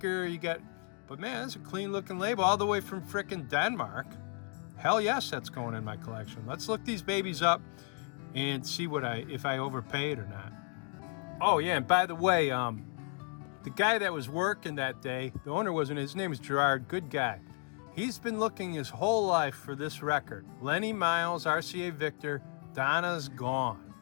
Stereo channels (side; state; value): right; quieter; 38.6 dB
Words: but man, that's a clean looking label all the way from frickin' Denmark. Hell yes, that's going in my collection. Let's look these babies up and see if I overpaid or not. Oh yeah, and by the way, the guy that was working that day, the owner his name is Gerard, good guy. He's been looking his whole life for this record. Lenny Miles, RCA Victor, Donna's Gone.